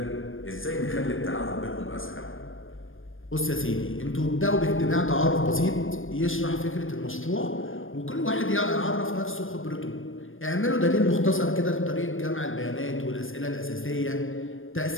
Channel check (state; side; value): late; right; 0.59 ms